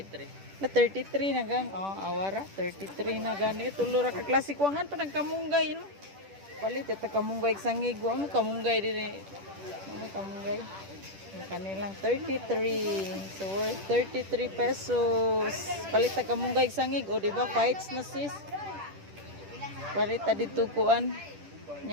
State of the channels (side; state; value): left; late; 10 ms